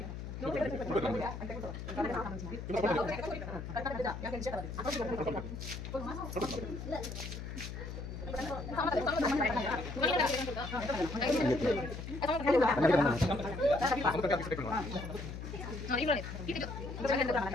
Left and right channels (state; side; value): noise; left; hum, 8 dB below the sound